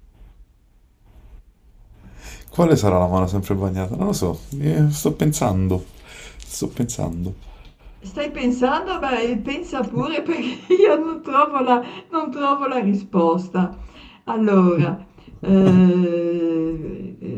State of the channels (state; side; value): identical; both; correlation 1.00